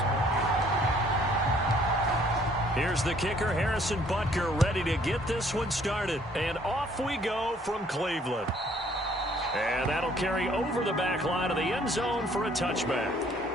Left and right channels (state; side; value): normal; both; correlation 0.61